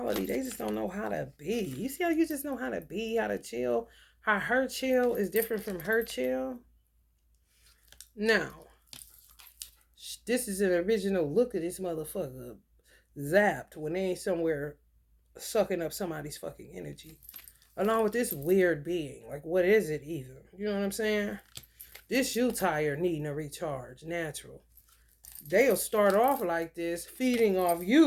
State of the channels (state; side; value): identical; both; correlation 1.00